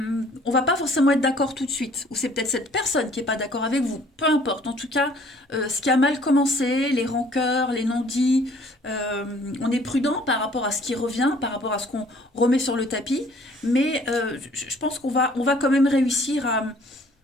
va pas forcément être d'accord tout de suite. Ou c'est peut-être cette personne qui n'est pas d'accord avec vous. Peu importe. En tout cas, ce qui a mal commencé, les rancœurs, les non-dits, on est prudent par rapport à ce qui revient, par rapport à ce qu'on remet sur le tapis. Mais je pense on va quand même réussir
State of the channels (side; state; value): both; normal; correlation 0.57